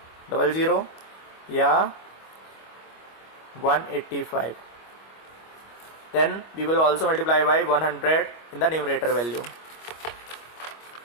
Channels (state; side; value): late; right; 25 ms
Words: या 185. Then we will also multiply by 100 in the numerator value.